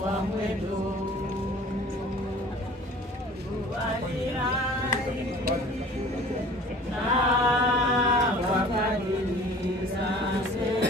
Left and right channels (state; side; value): normal; both; correlation 0.47